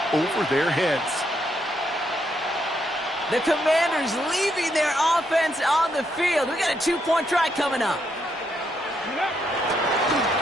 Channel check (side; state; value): both; normal; correlation 0.77